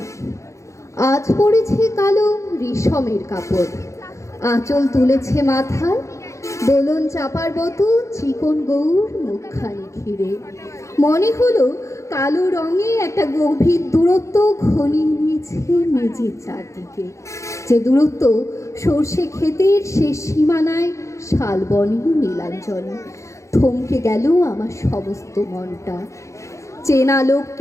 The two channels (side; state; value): right; late; 0.15 ms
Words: আজ পড়েছে কালো রেশমের কাপড়, আঁচল তুলেছে মাথায়, দোলন চাপার মতো চিকন গৌর মুখখানি ঘিরে। মনে হলো কালো রঙে একটা গভীর দূরত্ব ঘনিয়ে নিয়েছে মেঝের চারদিকে, যে দূরত্ব সর্ষে ক্ষেতের শেষ সীমানায় শালবনে নীলাঞ্জনে। থমকে গেল আমার সমস্ত মনটা। চেনা